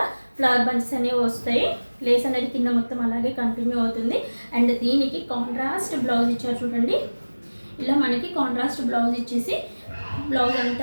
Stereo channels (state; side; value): inverted; both; correlation -1.00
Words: ఫ్లవర్ బంచెస్ అనేవి వస్తాయి. లేస్ అనేది కింద మొత్తం అలాగే కంటిన్యూ అవుతుంది. అండ్ దీనికి కాంట్రాస్ట్ బ్లౌజ్ ఇచ్చారు చూడండి. ఇలా మనకి కాంట్రాస్ట్ బ్లౌజ్ ఇచ్చేసి బ్లౌజ్